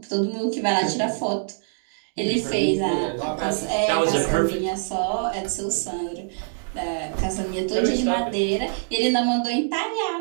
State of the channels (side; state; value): left; silent; digital silence